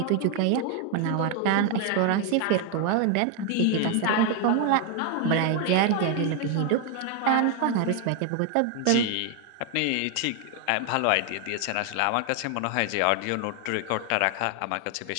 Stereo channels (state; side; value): different; both; correlation 0.00